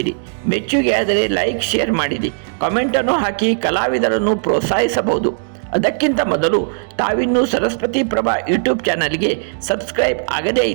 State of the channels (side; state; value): left; silent; digital silence